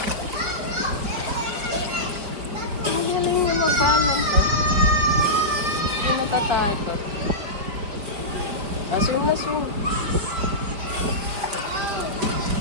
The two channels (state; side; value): late; left; 5.1 ms